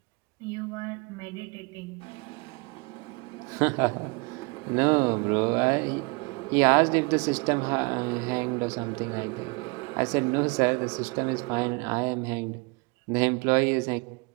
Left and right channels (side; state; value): left; quieter; 29.2 dB